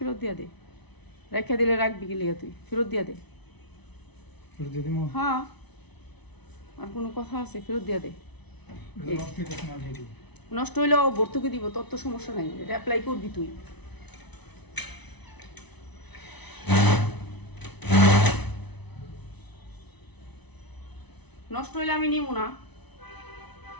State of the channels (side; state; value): right; late; 0.99 ms